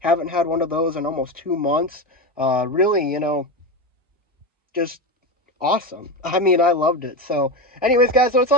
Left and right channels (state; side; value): normal; both; correlation 0.18